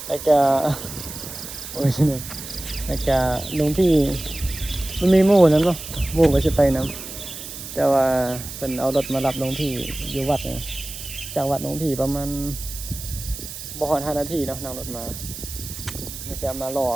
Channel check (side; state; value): right; noise; hiss, 10 dB below the sound